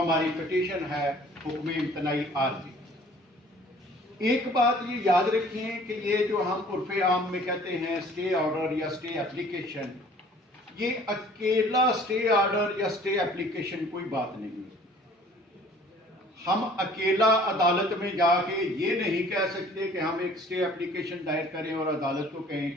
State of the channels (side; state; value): both; normal; correlation 0.52